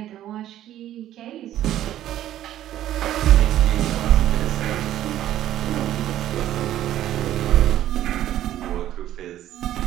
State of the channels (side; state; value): left; quieter; 12.6 dB